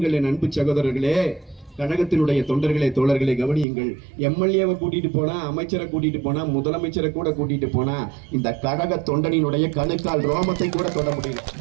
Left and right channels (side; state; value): left; drops out; at 3.7 s